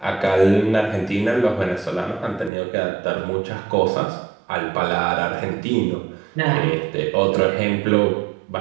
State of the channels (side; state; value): left; drops out; at 2.5 s